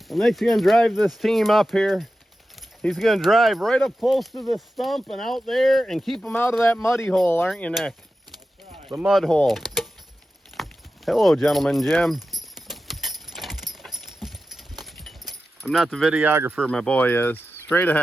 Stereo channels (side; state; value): both; normal; correlation 0.92